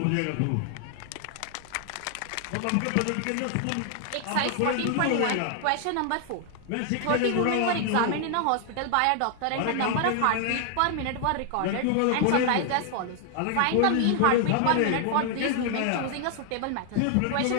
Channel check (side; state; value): both; different; correlation 0.00